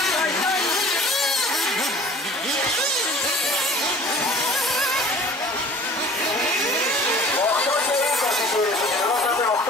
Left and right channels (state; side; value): normal; both; correlation 0.47